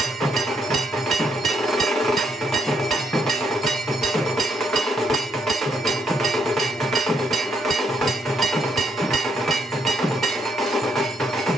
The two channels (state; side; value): normal; both; correlation 0.74